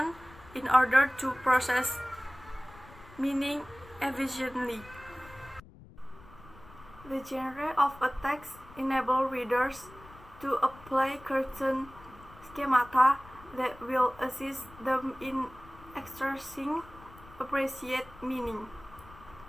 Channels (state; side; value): noise; left; rumble, 21 dB below the sound